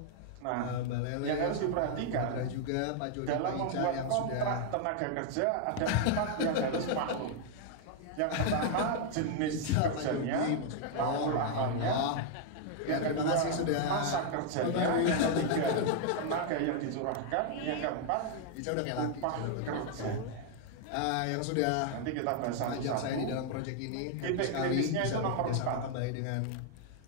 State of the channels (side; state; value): both; different; correlation 0.00